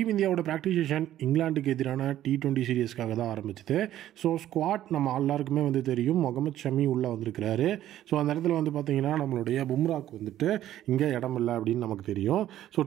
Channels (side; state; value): left; quieter; 12.6 dB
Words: இந்தியாவோட ப்ராக்டிஸ் செஷன் இங்கிலாந்துக்கு எதிரான T20 சீரீஸ்க்காக தான் ஆரம்பிச்சது. ஸோ ஸ்குவாட் நம்ம எல்லாருக்குமே தெரியும், முகமது ஷமி உள்ளே வந்திருக்கிறாரு. ஸோ அந்த இடத்துல பார்த்தீங்கன்னா நம்மளுடைய பும்ராக்கு இங்கே இடம் இல்லை அப்படின்னு நமக்கு தெரியும். ஸோ